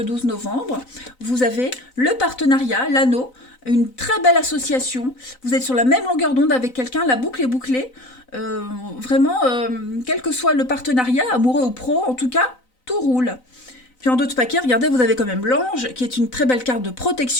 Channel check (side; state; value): right; late; 3.9 ms